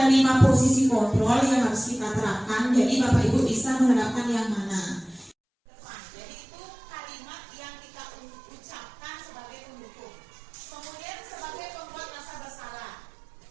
5 posisi kontrol yang harus kita terapkan. Jadi Bapak Ibu bisa menerapkan yang mana? Jadi itu kalimat yang kita ucapkan sebagai pendukung. Kemudian sebagai pembuat rasa bersalah.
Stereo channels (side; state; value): left; drops out; at 5.4 s